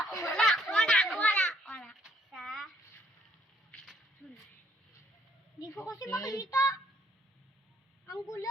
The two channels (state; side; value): normal; both; correlation 0.67